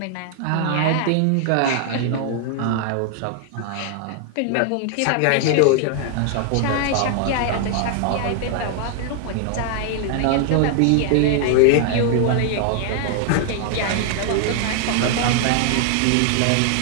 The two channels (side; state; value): both; different; correlation 0.00